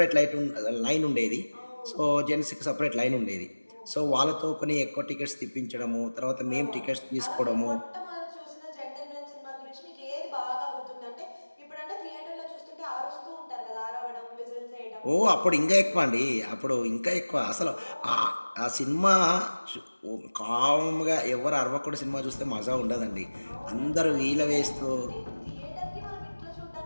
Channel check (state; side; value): inverted; both; correlation -1.00